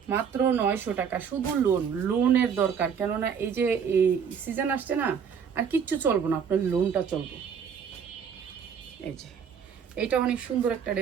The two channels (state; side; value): quieter; left; 7.1 dB